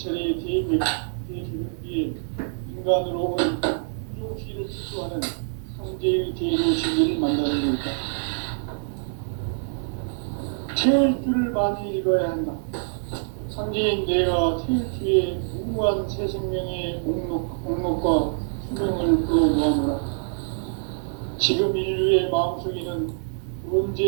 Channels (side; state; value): left; silent; digital silence